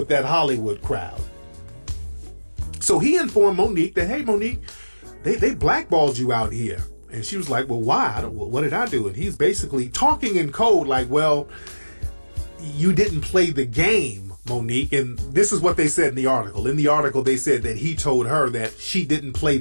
that Hollywood crowd. So he informed Monique that, hey, Monique, they blackballed you out here. And she was like, well, why? What did I do? And he's basically talking in code like, well, you didn't play the game, Monique. And this is what they said in the article. In the article, they said that he told her that she didn't play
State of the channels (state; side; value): inverted; both; correlation -1.00